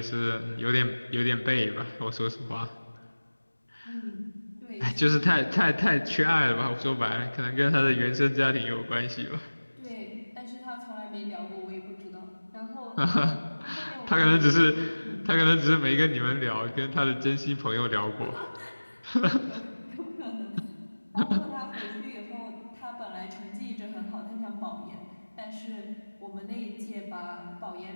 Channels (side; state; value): both; inverted; correlation -1.00